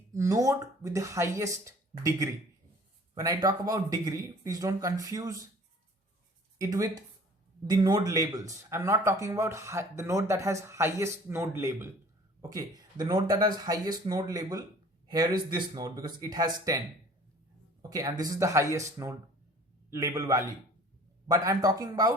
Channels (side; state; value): both; normal; correlation 0.49